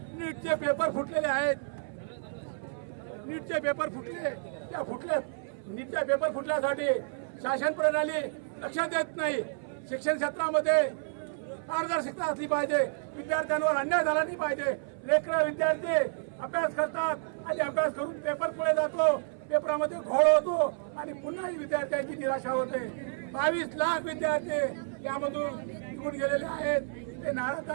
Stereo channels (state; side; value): silent; left; 57 dB below the other